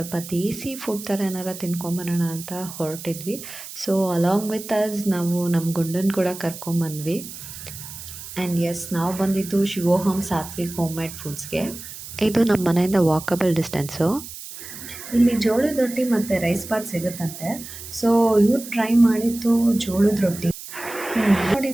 ದೇಸಿ ಫುಡ್ ಥರ ಏನಾರ ತಿನ್ಕೊಂಬರೋಣ ಅಂತ ಹೊರಟಿದ್ವಿ. ಸೊ ಅಲಾಂಗ್ ವಿತ್ ಅಸ್ ನಾವು ನಮ್ಮ ಗುಂಡನ ಕೂಡ ಕರ್ಕೊಂಬಂದ್ವಿ. ಆ್ಯಂಡ್ ಎಸ್, ನಾವು ಬಂದಿದ್ದು ಶಿವೋಹಮ್ ಸಾತ್ವಿಕ್ ಹೋಮ್ ಮೇಡ್ ಫುಡ್ಸ್ಗೆ. ಇದು ನಮ್ಮ ಮನೆಯಿಂದ ವಾಕಬಲ್ ಡಿಸ್ಟೆನ್ಸು. ಇಲ್ಲಿ ಜೋಳದ ರೊಟ್ಟಿ ಮತ್ತು ರೈಸ್ ಬಾತ್ ಸಿಗುತ್ತಂತೆ. ಸೊ ಇವ್ರು ಟ್ರೈ ಮಾಡಿದ್ದು ಜೋಳದ ರೊಟ್ಟಿ ನೋಡಿ,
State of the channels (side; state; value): right; noise; hiss, 12 dB below the sound